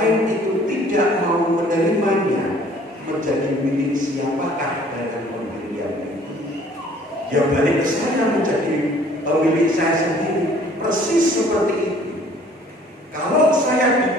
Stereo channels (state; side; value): normal; both; correlation 0.56